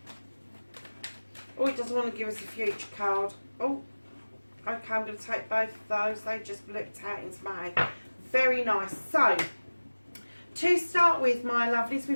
Oh, it doesn't want to give us a future card. Oh, okay, I'm going to take both of those. They just blipped out into my head. Very nice. So, to start with, my lovelies,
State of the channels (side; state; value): both; inverted; correlation -1.00